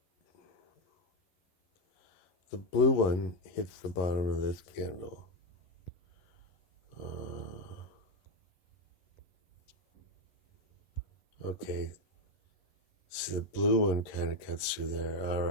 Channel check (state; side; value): late; right; 11 ms